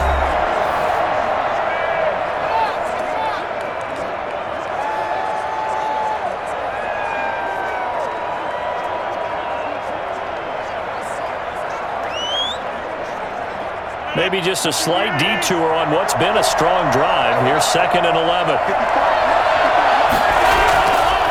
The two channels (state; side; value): identical; both; correlation 1.00